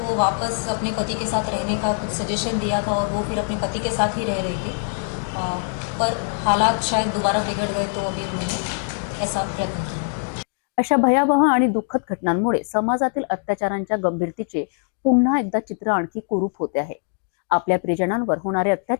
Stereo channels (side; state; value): right; silent; digital silence